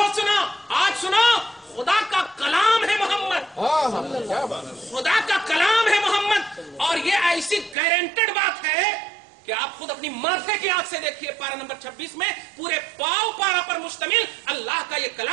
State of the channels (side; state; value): left; drops out; at 7.8 s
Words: سنا. آج سنو، خدا کا کلام ہے محمد. خدا کا کلام ہے محمد. اور یہ ایسی گارنٹیڈ بات ہے کہ آپ خود اپنی معرفے کی آنکھ سے دیکھیے. پارہ نمبر 26 میں پورے پاؤ پارہ پر مشتمل اللہ کا یہ